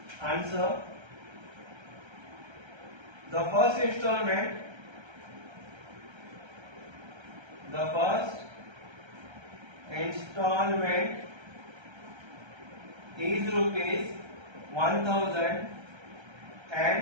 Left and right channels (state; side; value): late; left; 1.3 ms